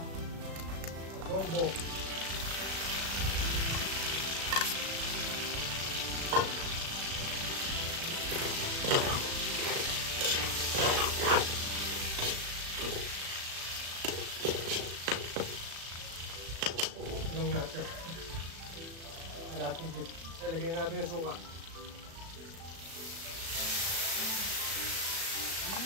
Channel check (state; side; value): late; left; 36 ms